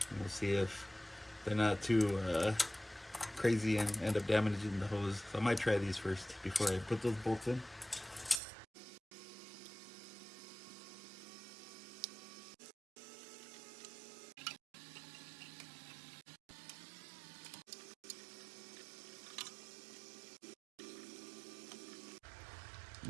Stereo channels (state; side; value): drops out; left; at 8.4 s